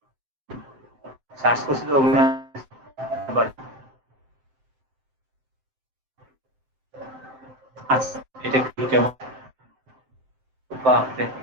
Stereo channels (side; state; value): left; late; 7.8 ms